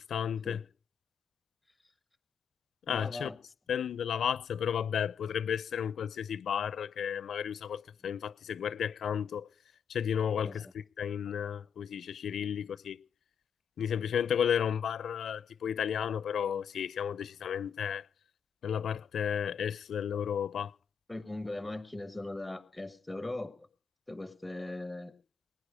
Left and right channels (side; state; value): right; quieter; 7.4 dB